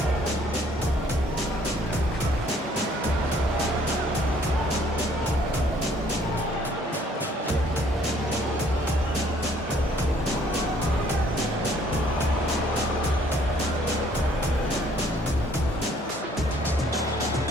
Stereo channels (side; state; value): both; normal; correlation 0.60